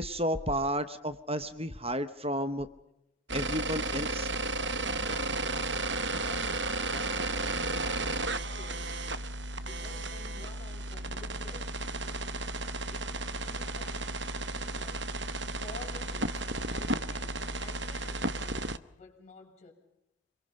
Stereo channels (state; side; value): normal; both; correlation 0.17